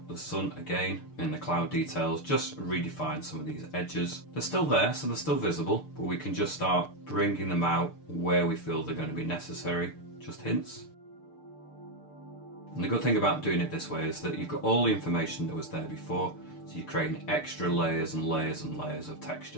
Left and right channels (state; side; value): late; right; 6.7 ms